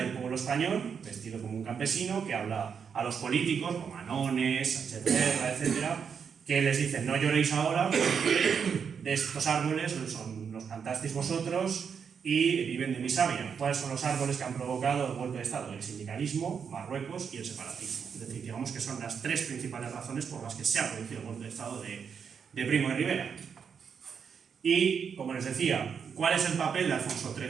pueblo español, vestido como un campesino, que habla a los políticos, como Anones, Sánchez Guerra, etcétera, que les dicen: no lloréis ahora porque de estos árboles los plantasteis vosotros y viven de mi savia. ¿Cuáles son los árboles que han provocado el golpe de Estado? El sindicalismo, Marruecos y el separatismo. Es decir, digamos que son las 3 principales razones por las que se ha producido el golpe de Estado de Primo de Rivera. Y, como les decía, ¿cuál es el papel de Alfonso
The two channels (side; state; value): left; quieter; 6.7 dB